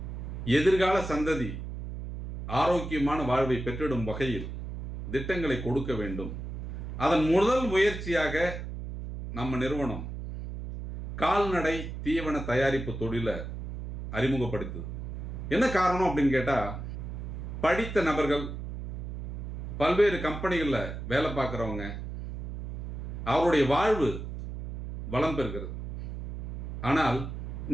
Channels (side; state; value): right; noise; hum, 7 dB below the sound